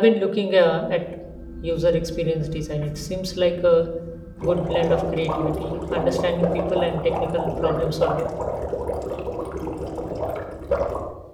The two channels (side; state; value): both; identical; correlation 1.00